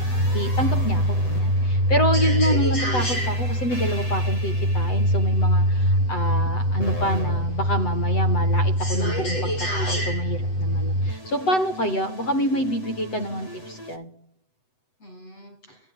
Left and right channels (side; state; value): right; late; 7.9 ms